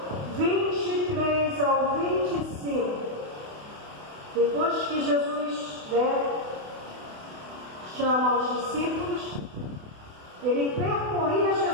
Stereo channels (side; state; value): left; late; 28 ms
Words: 23 ao 25, depois que Jesus chama os discípulos, ele percorria